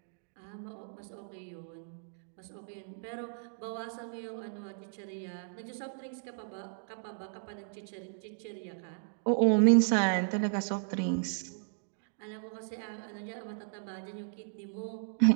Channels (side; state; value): left; silent; digital silence